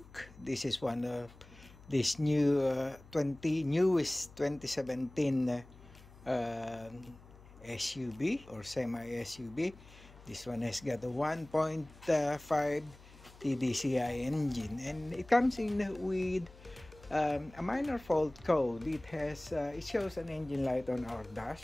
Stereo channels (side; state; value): left; noise; hum, 22 dB below the sound